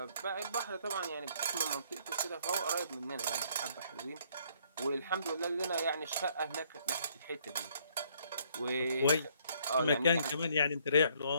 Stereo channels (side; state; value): both; inverted; correlation -0.66